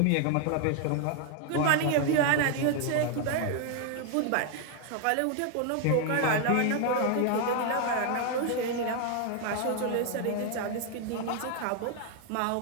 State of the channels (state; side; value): different; both; correlation 0.00